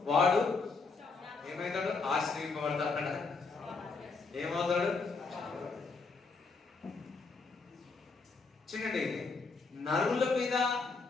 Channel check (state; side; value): quieter; right; 4.3 dB